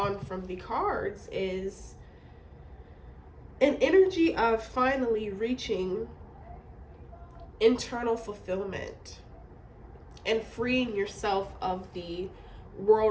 from the cards is an energy of finally reaching internal fulfillment and freeing yourself of the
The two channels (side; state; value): both; identical; correlation 1.00